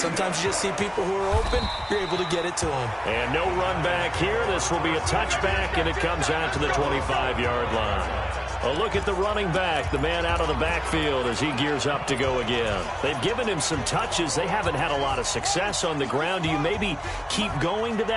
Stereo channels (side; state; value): both; identical; correlation 1.00